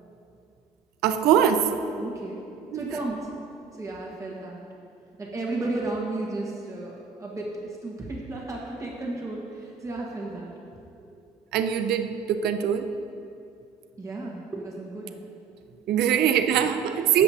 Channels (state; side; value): quieter; left; 7.0 dB